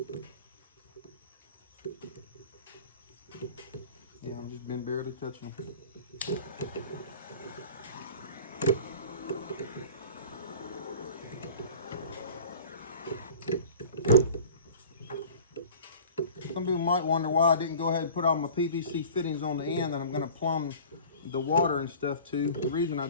Yeah, I've just been barely touching them. Some people might wonder why I didn't go ahead and put all my PVC fittings on the end that I'm going to plumb the water and stuff to. The reason I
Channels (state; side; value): inverted; both; correlation -0.43